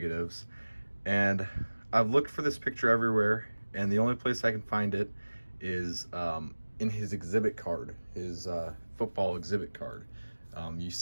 and I've looked for this picture everywhere, and the only place I can find it is in his exhibit card, his football exhibit card. You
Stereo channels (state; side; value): inverted; both; correlation -1.00